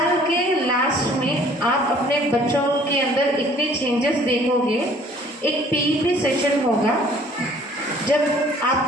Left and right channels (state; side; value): normal; both; correlation 0.55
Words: के last में आप अपने बच्चों के अंदर इतने changes देखोगे. एक पीईपी सेशन होगा जब